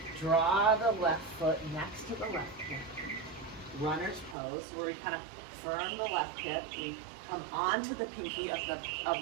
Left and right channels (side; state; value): left; drops out; at 4.4 s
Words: Draw the left foot next to the left hip. Runner's pose, where we kind of firm the left hip. We come onto the pinky of